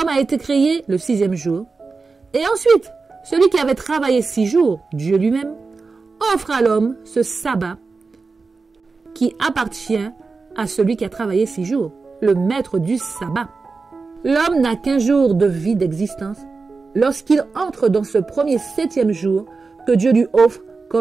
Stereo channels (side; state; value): left; quieter; 4.3 dB